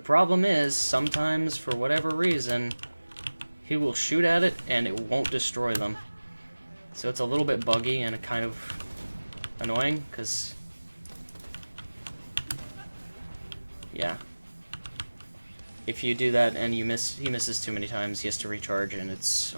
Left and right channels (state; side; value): inverted; both; correlation -1.00